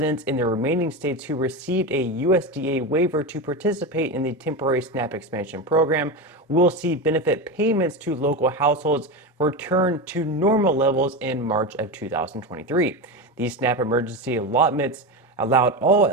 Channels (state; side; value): normal; both; correlation 0.19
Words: in the remaining states who received a USDA waiver to participate in the temporary SNAP expansion program will see benefit payments to local households return to normal levels in March of 2023. These SNAP emergency allotments allowed all